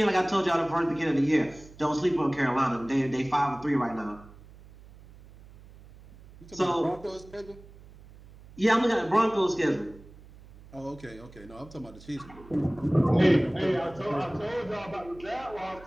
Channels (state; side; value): noise; right; hum, 21 dB below the sound